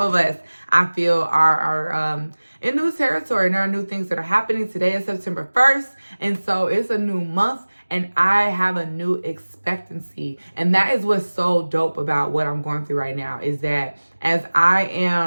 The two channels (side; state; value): both; inverted; correlation -1.00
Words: of us, I feel, are in new territory and there are new things that are happening. Today is September 1st. And so it's a new month and I have a new expectancy. And that is what's so dope about what I'm going through right now, is that as I